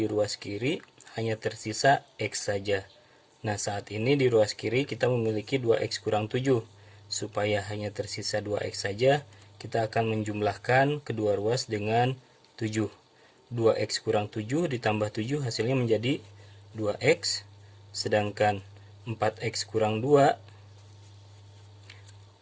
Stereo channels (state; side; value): identical; both; correlation 1.00